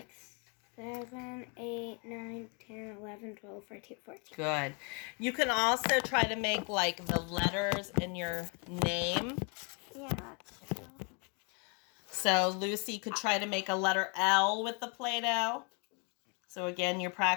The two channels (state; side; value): quieter; right; 35.2 dB